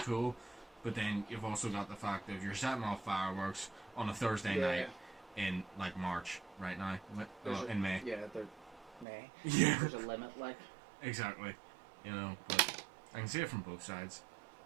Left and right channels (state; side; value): drops out; left; at 9.1 s